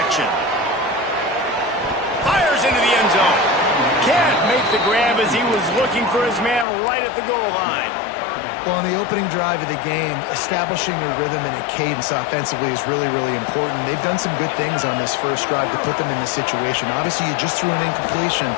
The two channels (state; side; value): drops out; right; at 6.7 s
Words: Fires into the end zone. Can't make the grab as he was looking for his man right at the goal line. Well, on the opening drive of the game, establishing a rhythm and a cadence offensively is really, really important. They've done some good things on this first drive to put them in this situation. Obviously, you just threw an incompletion